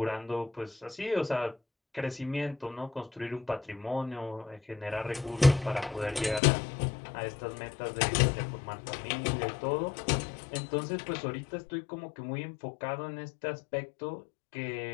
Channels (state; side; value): drops out; right; at 6.4 s